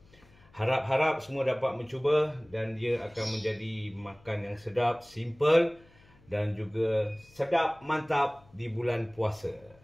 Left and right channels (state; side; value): noise; left; hum, 28 dB below the sound